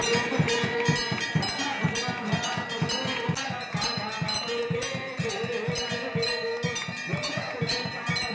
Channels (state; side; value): identical; both; correlation 1.00